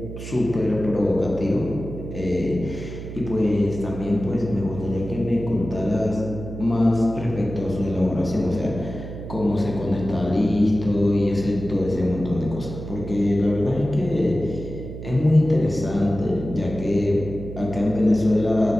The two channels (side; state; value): right; noise; hum, 10 dB below the sound